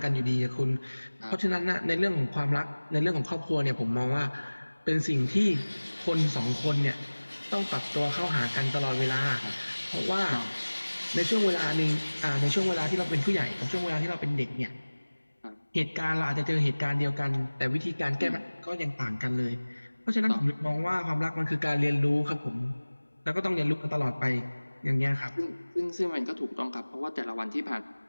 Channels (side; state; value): both; inverted; correlation -1.00